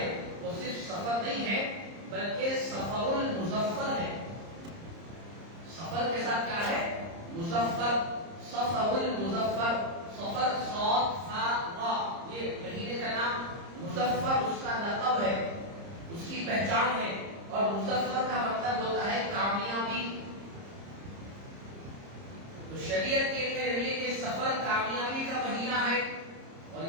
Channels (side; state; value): left; late; 30 ms